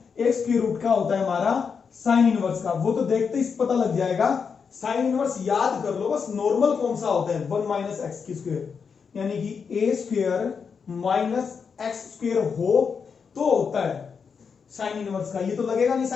एक स्क्वायर रूट का होता है हमारा साइन इनवर्स का, वो तो देखते ही पता लग जाएगा। साइन इनवर्स याद कर लो बस, नॉर्मल कौन सा होता है, 1 माइनस एक्स की स्क्वायर, यानी कि ए स्क्वायर माइनस एक्स स्क्वायर हो तो होता है साइन इनवर्स का, ये तो लगेगा नहीं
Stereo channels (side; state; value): right; quieter; 6.0 dB